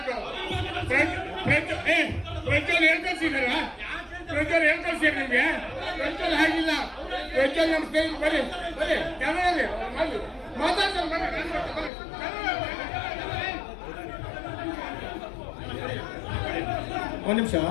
ಪ್ರಜ್ವಲ್ ಏನ್ ಕಳ್ಸಿದಾರ? ಪ್ರಜ್ವಲ್ ಏನ್ ಕಳ್ಸಿರ ನಿಮ್ಗೆ? ಪ್ರಜ್ವಲ್ ಹಾಗಿಲ್ಲ. ಪ್ರಜ್ವಲ್ ನಮ್ಮ ಸ್ನೇಹಿತ. ಬರ್ರಿ ಬರ್ರಿ ಕನ್ನಡ ಮಾತಾಡ್ತಾರೆ. ಒಂದು ನಿಮಿಷ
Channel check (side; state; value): right; drops out; at 11.9 s